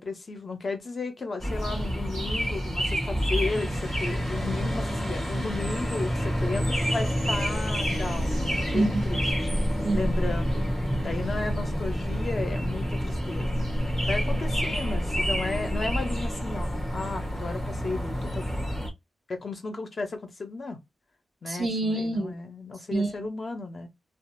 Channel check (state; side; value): normal; both; correlation 0.93